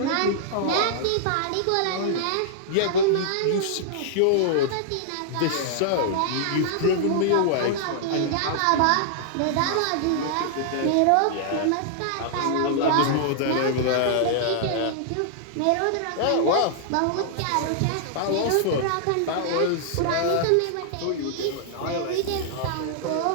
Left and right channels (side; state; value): both; different; correlation -0.01